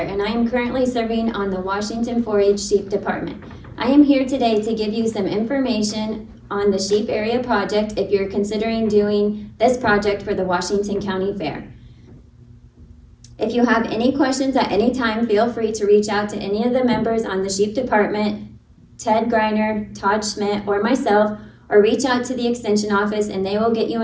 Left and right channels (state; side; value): identical; both; correlation 1.00